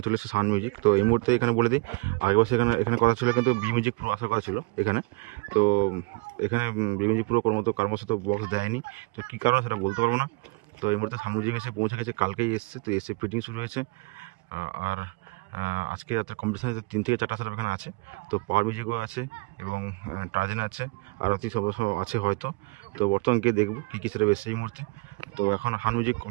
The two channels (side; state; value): left; quieter; 27.3 dB